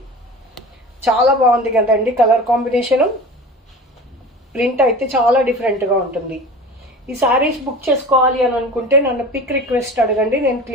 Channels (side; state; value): both; normal; correlation 0.36